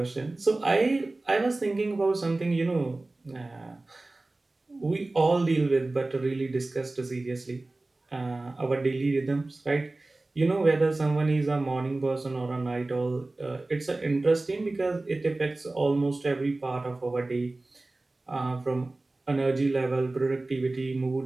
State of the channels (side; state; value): left; quieter; 3.0 dB